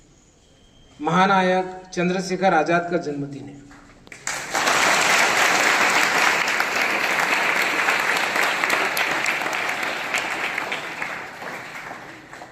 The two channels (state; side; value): identical; both; correlation 1.00